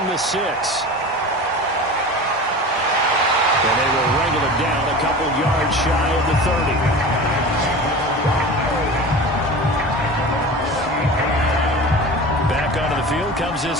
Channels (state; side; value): normal; both; correlation 0.34